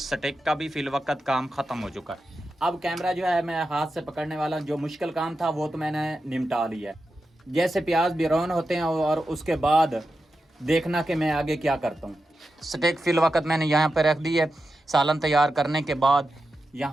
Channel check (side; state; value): both; normal; correlation 0.90